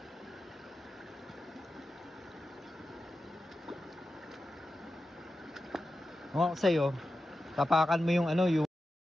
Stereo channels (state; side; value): normal; both; correlation 0.92